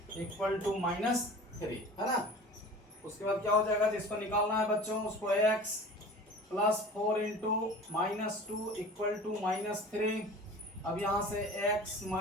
equal to -3, है ना। उसके बाद क्या हो जाएगा, जिसको निकालना है बच्चों उसको x +4 इंटू -2 इक्वल टू -3। अब यहाँ से x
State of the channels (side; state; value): both; normal; correlation 0.40